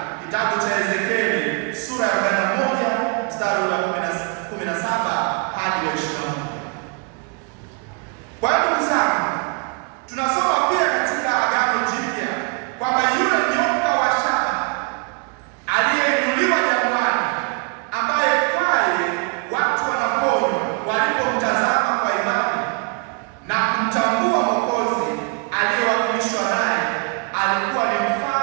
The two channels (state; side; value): quieter; left; 35.8 dB